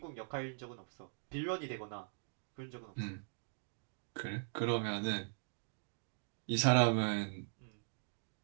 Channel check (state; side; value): silent; left; digital silence